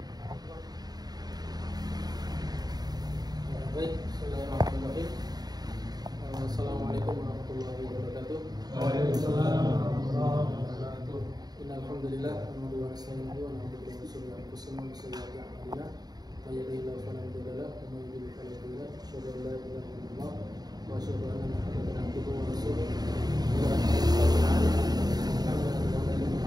bismillahirrahmanirrahim. Assalamualaikum warahmatullahi wabarakatuh. Waalaikumsalam warahmatullahi wabarakatuh. Alhamdulillah, nahmaduhu wa nasta'inuhu wa na'udzu billahi min shururi anfusina wa sayyiati a'malina. May yahdihillahu fala mudilla lahu wa may yudlil fala hadiya lahu. Asyhadu an la ilaha illallah wa asyhadu anna Muhammadan abduhu wa rasuluh.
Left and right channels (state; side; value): late; left; 0.19 ms